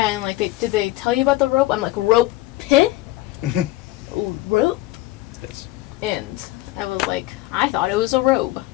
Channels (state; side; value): quieter; right; 18.0 dB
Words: and did they tell you about the rope? I'm like, "Rope pit, rope," Yes. and I was like, "I thought it was a robe,"